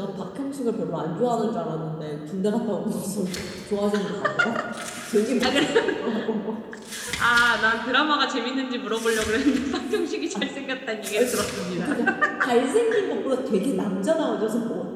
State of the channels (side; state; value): both; identical; correlation 1.00